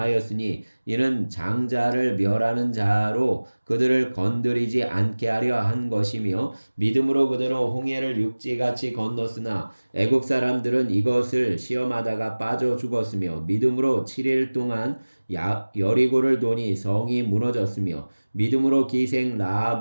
이는 장자를 멸하는 자로 그들을 건드리지 않게 하려 한 것이며 믿음으로 그들은 홍해를 육지같이 건넜으나 애굽 사람들은 이것을 시험하다가 빠져 죽었으며 믿음으로 7일 동안 여리고를 도니 성이 무너졌으며 믿음으로 기생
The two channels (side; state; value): both; inverted; correlation -1.00